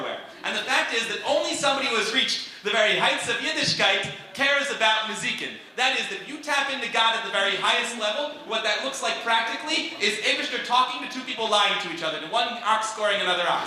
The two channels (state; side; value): identical; both; correlation 1.00